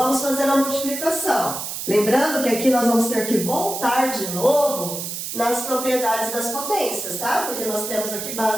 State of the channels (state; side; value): noise; right; hiss, 6 dB below the sound